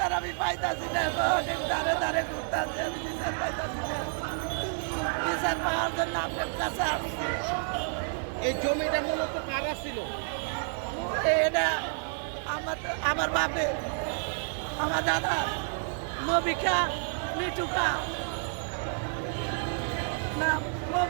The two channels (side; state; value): left; silent; 58 dB below the other